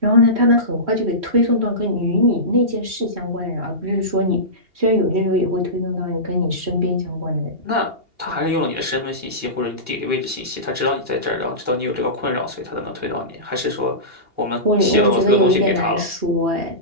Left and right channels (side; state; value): left; late; 2.8 ms